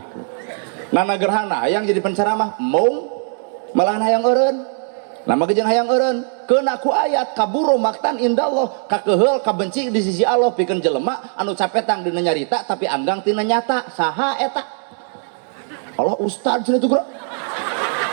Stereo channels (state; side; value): silent; left; 56 dB below the other